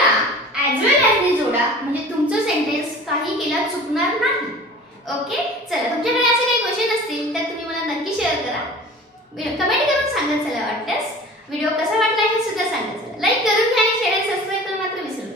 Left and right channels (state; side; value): normal; both; correlation 0.41